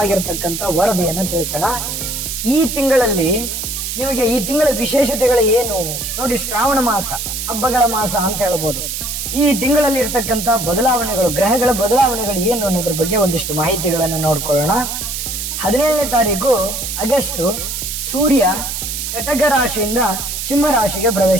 ವರದಿಯನ್ನ ತಿಳಿಸೋಣ. ಈ ತಿಂಗಳಲ್ಲಿ ನಿಮಗೆ ಈ ತಿಂಗಳ ವಿಶೇಷತೆಗಳು ಏನು ನೋಡಿ. ಶ್ರಾವಣ ಮಾಸ, ಹಬ್ಬಗಳ ಮಾಸ ಅಂತ ಹೇಳ್ಬೋದು. ಈ ತಿಂಗಳಲ್ಲಿ ಇರ್ತಕ್ಕಂಥ ಬದಲಾವಣೆಗಳು, ಗ್ರಹಗಳ ಬದಲಾವಣೆಗಳು ಏನು ಅನ್ನೋದ್ರ ಬಗ್ಗೆ ಒಂದಿಷ್ಟು ಮಾಹಿತಿಗಳನ್ನು ನೋಡ್ಕೊಳ್ಳೋಣ. 17ನೇ ತಾರೀಕು ಆಗಸ್ಟ್ ಸೂರ್ಯ ಕಟಕ ರಾಶಿಯಿಂದ ಸಿಂಹ ರಾಶಿಗೆ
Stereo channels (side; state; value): right; noise; hiss, 4 dB below the sound